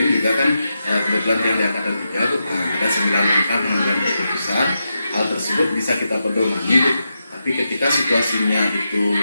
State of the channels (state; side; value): inverted; both; correlation -0.87